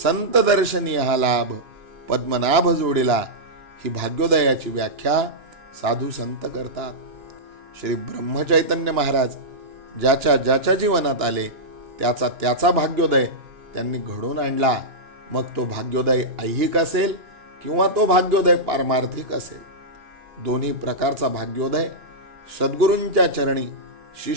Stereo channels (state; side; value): late; left; 2.9 ms